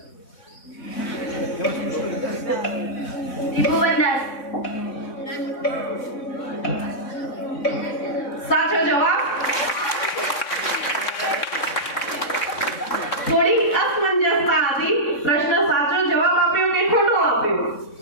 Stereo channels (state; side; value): late; right; 3.6 ms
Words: ત્રિભુવનદાસ. સાચો જવાબ. થોડી અસમંજસતા હતી, પ્રશ્ન સાચો જવાબ આપ્યો કે ખોટો આપ્યો.